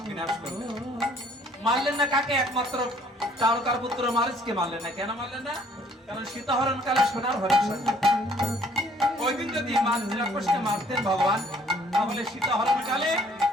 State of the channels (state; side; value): normal; both; correlation 0.59